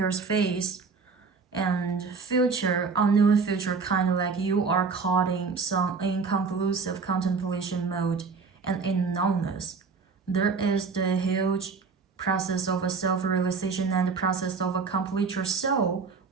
face, and future, unknown future, kind of like you are caught in some inconclusive contemplation mode and in numbness. There is the huge process of a self-realization and the process of a complete your soul,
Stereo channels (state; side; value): quieter; left; 5.0 dB